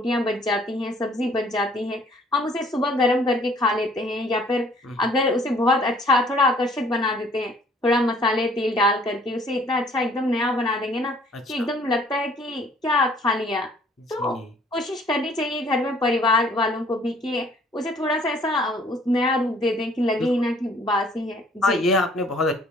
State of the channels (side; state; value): both; normal; correlation 0.58